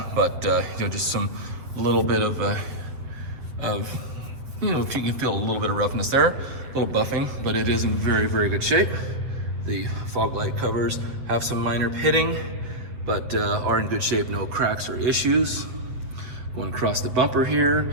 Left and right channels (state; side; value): late; left; 8.0 ms